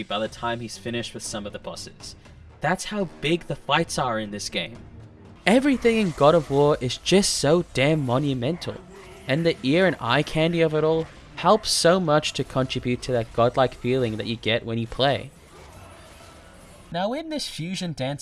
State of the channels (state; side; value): identical; both; correlation 1.00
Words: by the time he's finished with some of the bosses. That's how big the fights are in this game. Everything in God of War is just so damn monumental, and the ear and eye candy of it all helps so much to contribute to that godlike feeling that you get when you play. Now in this fusion